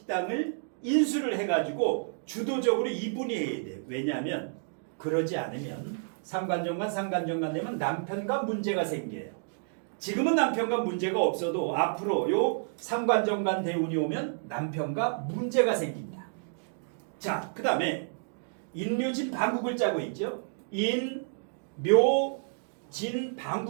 인수를 해가지고 주도적으로 이분이 해야 돼요. 왜냐하면 그러지 않으면 상관정관 되면 남편과 문제가 생겨요. 지금은 남편과 문제가 없어도 앞으로 요 상관정관 대운이 오면 남편과 문제가 생긴다. 자, 그 다음에 인묘진 방국을 짜고 있죠. 인묘진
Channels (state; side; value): silent; left; digital silence